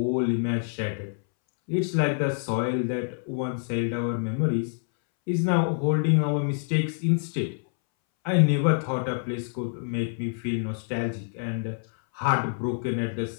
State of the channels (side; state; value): right; silent; 60 dB below the other